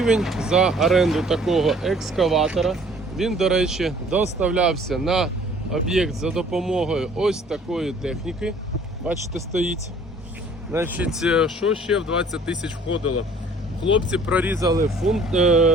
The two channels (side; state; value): both; normal; correlation 0.54